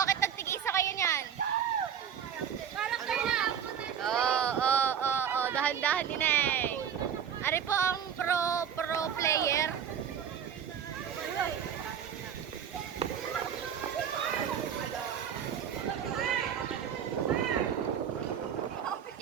nagtigisa kayo niyan? Oo. Dahan-dahan din eh. Ari po ang pro player.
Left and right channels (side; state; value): left; quieter; 8.3 dB